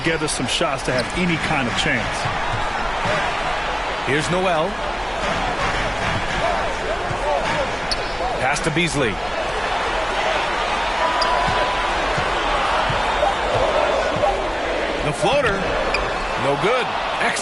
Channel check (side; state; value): both; identical; correlation 1.00